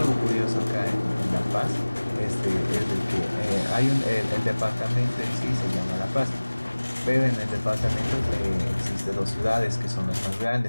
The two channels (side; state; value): both; inverted; correlation -1.00